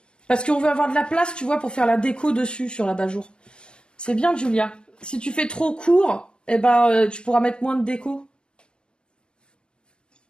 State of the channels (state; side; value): late; right; 0.052 ms